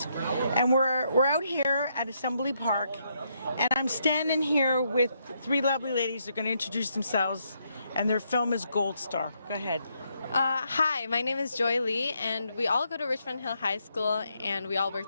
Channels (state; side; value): inverted; both; correlation -0.77